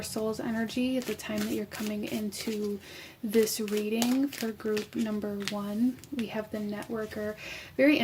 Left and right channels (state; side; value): identical; both; correlation 1.00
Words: soul's energy at the time that you're coming into this reading for group number 1. We have the networker. Very